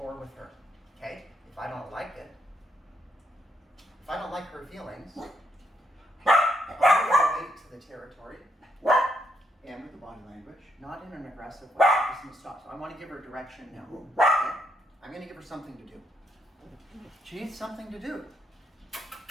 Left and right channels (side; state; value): both; normal; correlation 0.76